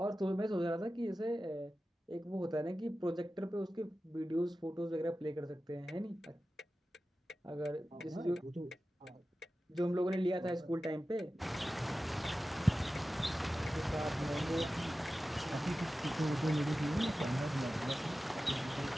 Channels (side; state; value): both; normal; correlation 0.94